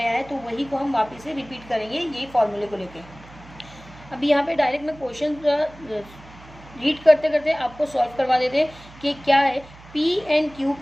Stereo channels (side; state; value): right; noise; hum, 21 dB below the sound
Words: है, तो वही को हम वापस से रिपीट करेंगे यही फॉर्मूले को लेके। अभी यहाँ पे डायरेक्ट मैं क्वेश्चन रीड करते करते आपको सॉल्व करवा देते हैं कि क्या है। P एंड Q